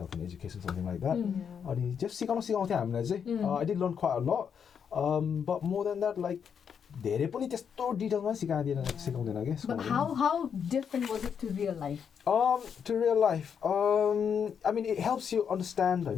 and education, something like that. अनि just सिकाउँथ्यो हामीलाई चाहिँ. I did learn quite a lot. But more than that, like धेरै पनि त्यस्तो डिटेलमा सिकाउँदैन के. But how different was it to real life? To real life, I mean it helps you understand, you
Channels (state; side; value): quieter; right; 7.3 dB